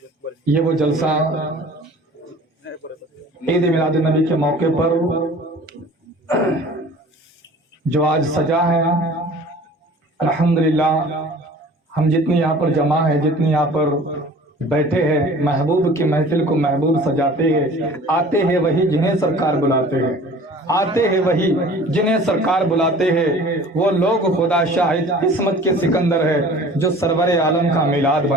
یہ وہ جلسہ عید میلاد النبی کے موقع پر جو آج سجا ہے، الحمدللہ ہم جتنی یہاں پر جمع ہے، جتنی یہاں پر بیٹھے ہیں، محبوب کی محفل کو محبوب سجاتے ہیں۔ آتے ہیں وہی جنہیں سرکار بلاتے ہیں، آتے ہیں وہی جنہیں سرکار بلاتے ہیں۔ وہ لوگ خدا شاہد قسمت کے سکندر ہے جو سرور عالم کا میلاد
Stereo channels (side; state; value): both; normal; correlation 0.45